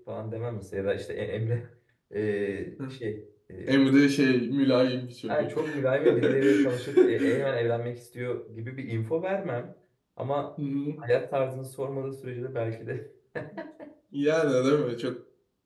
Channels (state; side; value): identical; both; correlation 1.00